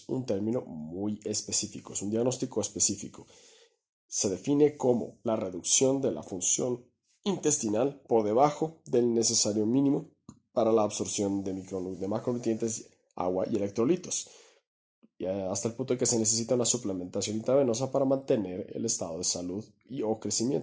un término muy específico, es un diagnóstico específico. Se define como la reducción de la función intestinal por debajo del necesario mínimo para la absorción de macronutrientes, agua y electrolitos, y hasta el punto de que se necesita una suplementación intravenosa para mantener el estado de salud o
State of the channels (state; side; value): identical; both; correlation 1.00